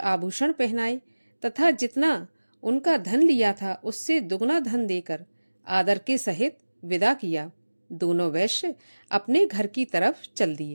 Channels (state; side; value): inverted; both; correlation -1.00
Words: पहनाए तथा जितना उनका धन लिया था उससे दुगना धन देकर आदर के सहित विदा किया। दोनों वैश्य अपने घर की तरफ चल